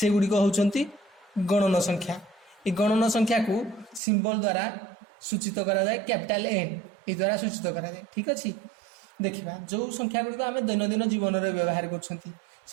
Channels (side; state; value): left; drops out; at 4.0 s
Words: गुडी को होचंती गणन संख्या। ए गणन संख्या को सिंबल द्वारा सूचित करा जाए, कैपिटल एन ए द्वारा सूचित करा जाए। ठीक अछि, देखिबा जो संख्या गुडी को आमे दैनंदिन जीवन रे व्यवहार करछंती